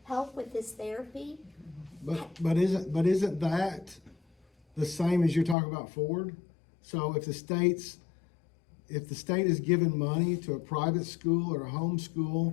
help with his therapy. But isn't that the same as you're talking about Ford? So if the state is giving money to a private school or a home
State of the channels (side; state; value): right; drops out; at 5.6 s